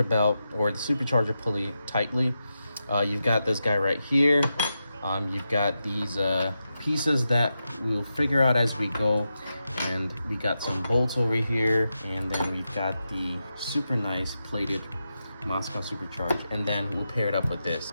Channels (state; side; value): inverted; both; correlation -0.88